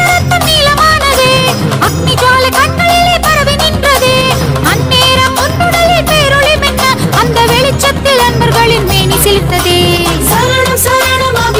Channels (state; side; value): identical; both; correlation 1.00